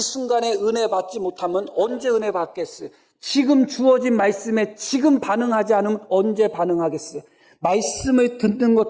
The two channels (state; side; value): identical; both; correlation 1.00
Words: 은혜 받지 못하면 언제 은혜 받겠어요? 지금 주어진 말씀에 지금 반응하지 않으면 언제 반응하겠어요? 말씀을 듣는